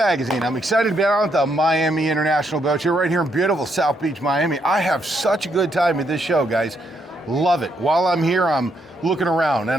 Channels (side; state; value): both; normal; correlation 0.76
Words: I'm excited to be out at the Miami International Boat Show right here in beautiful South Beach, Miami. I have such a good time at this show, guys. Love it. While I'm here, I'm looking around